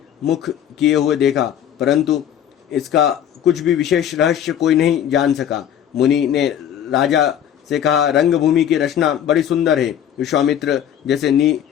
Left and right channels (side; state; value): right; quieter; 9.8 dB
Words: मुख किए हुए देखा, परंतु इसका कुछ भी विशेष रहस्य कोई नहीं जान सका। मुनि ने राजा से कहा, रंगभूमि की रचना बड़ी सुंदर है। विश्वामित्र जैसे